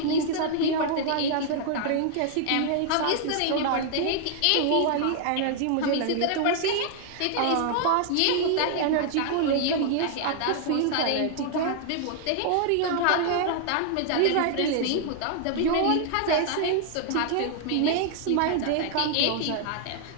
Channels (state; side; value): different; both; correlation 0.00